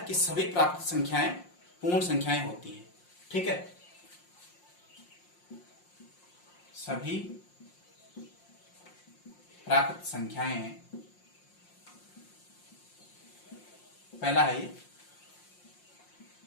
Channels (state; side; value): late; right; 5.6 ms